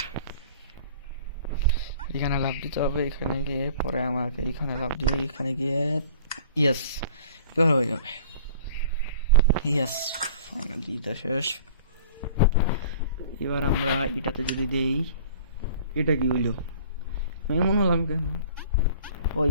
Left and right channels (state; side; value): inverted; both; correlation -0.47